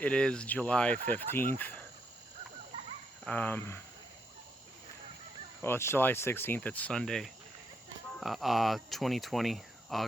is July 15th. Well, it's July 16th. It's Sunday. 2020,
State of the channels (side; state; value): both; normal; correlation 0.78